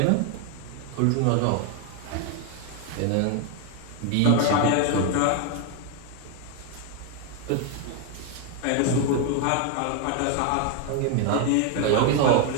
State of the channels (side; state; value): both; different; correlation 0.01